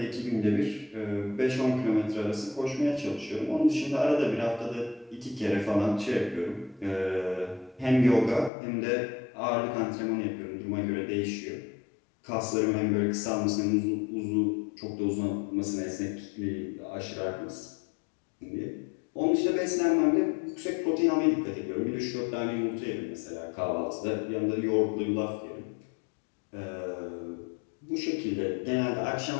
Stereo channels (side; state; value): right; drops out; at 8.5 s